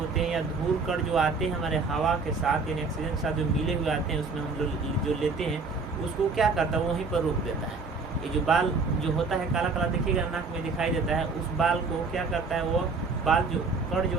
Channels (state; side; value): quieter; left; 4.2 dB